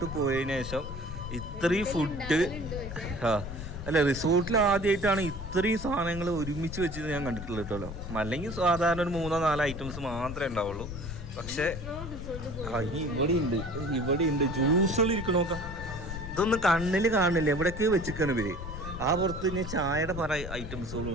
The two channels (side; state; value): left; noise; rumble, 9 dB below the sound